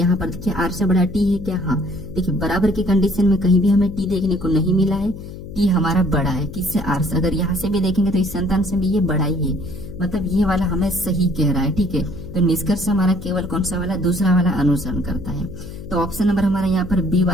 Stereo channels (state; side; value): noise; left; hum, 12 dB below the sound